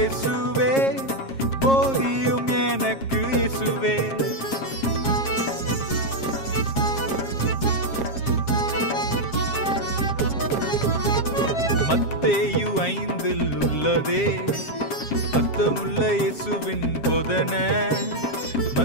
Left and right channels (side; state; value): right; late; 7.4 ms